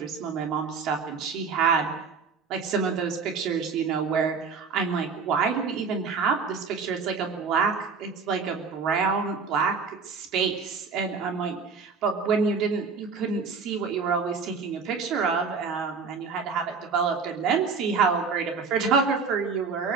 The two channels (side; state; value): left; quieter; 5.2 dB